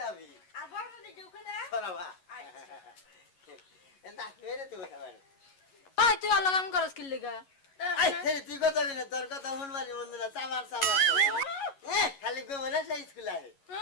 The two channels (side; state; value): right; late; 11 ms